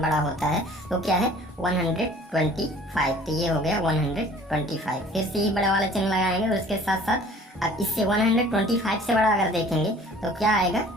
बड़ा होता है वो क्या है? 125। तो ये हो गया 125। फिर से ही बड़ा वाला चिन्ह लगाएंगे और उसके साथ साथ अब इससे 125 से बड़ा अगर देखेंगे तो क्या आएगा?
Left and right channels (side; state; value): both; normal; correlation 0.50